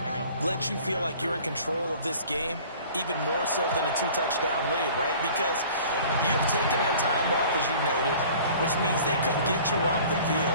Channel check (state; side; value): inverted; both; correlation -0.47